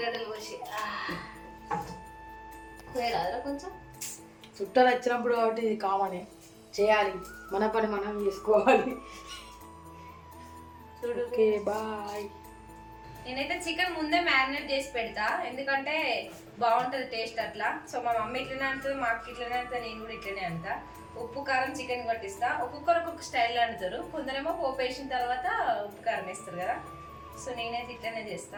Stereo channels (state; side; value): identical; both; correlation 1.00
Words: కోసి కొంచెం చుట్టాలు వచ్చినప్పుడు కాబట్టి ఇది కామనే చేయాలి. మన పని మనం చేసుకోవాలి. Okay bye. నేనైతే చికెన్ ముందే మ్యారినేట్ చేసి పెడతా, ఎందుకంటే బాగుంటుంది టేస్ట్ అట్లా. సో మా మమ్మీ ఇట్లనే అంటుంది, మా అక్క ఇట్లనే అంటుంది, నేను కూడా ఇట్లనే అంటా. ఉప్పు కారం చికెన్ పట్టిస్తా. ఒక్కొక్కరు ఒక్కొక్క స్టైల్ అంటారు, కొందరేమో పోపు వేసిన తర్వాత ఉప్పు కారం వేస్తారు కదా. సో నేనైతే ఇట్లనే